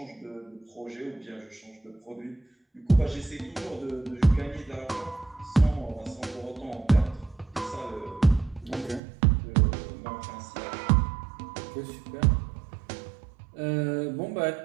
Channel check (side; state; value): left; drops out; at 9.0 s